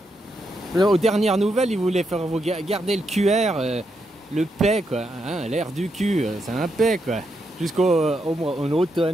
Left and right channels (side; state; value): both; normal; correlation 0.81